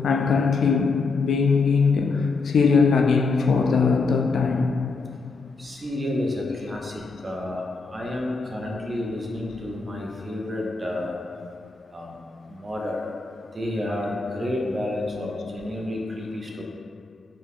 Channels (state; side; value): quieter; right; 4.1 dB